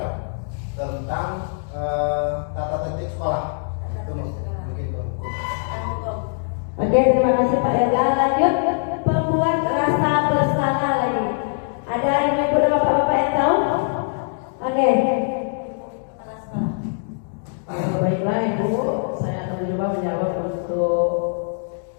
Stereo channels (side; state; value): right; silent; digital silence